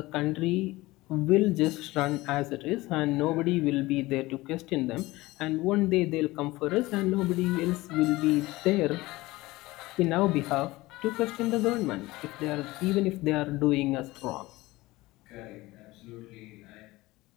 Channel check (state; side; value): quieter; right; 19.7 dB